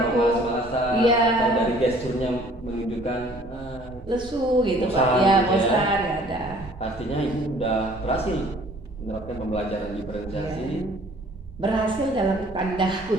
Malas-malasan. Iya. Atau dari gesturnya menunjukkan lesu gitu bosan, Pak. Ya, gitu bosan nggak ada. Artinya Ibu udah berhasil menerapkan pembelajaran diferensiasi. Berhasil dalam tanda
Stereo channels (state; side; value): normal; both; correlation 0.55